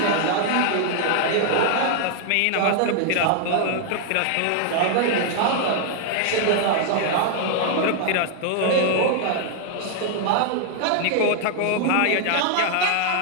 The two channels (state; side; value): different; both; correlation -0.01